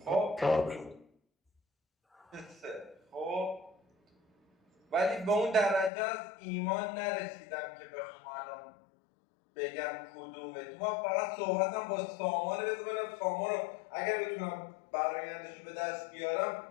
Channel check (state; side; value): drops out; right; at 5.9 s